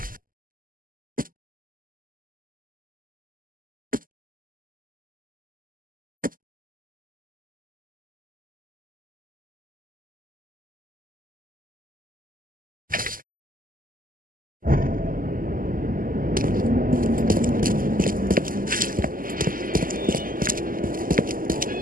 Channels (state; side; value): late; left; 0.41 ms